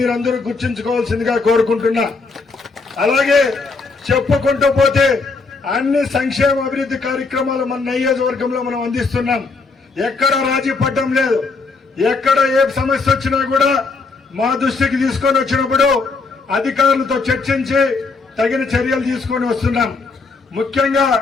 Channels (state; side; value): quieter; right; 4.1 dB